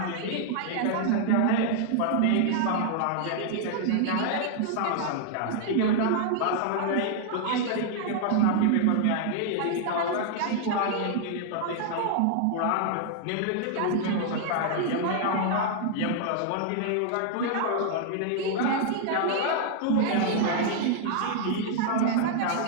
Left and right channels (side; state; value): both; different; correlation 0.00